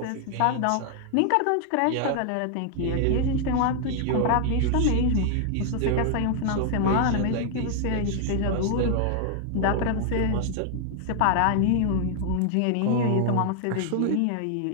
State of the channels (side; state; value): both; different; correlation 0.00